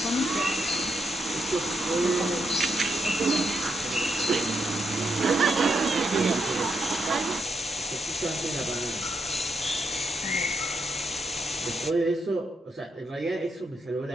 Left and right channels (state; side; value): normal; both; correlation 0.80